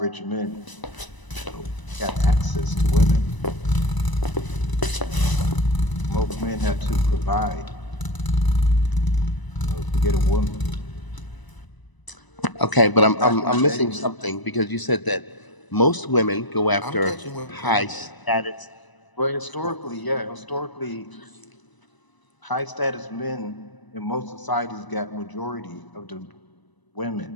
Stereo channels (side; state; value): right; late; 1.0 ms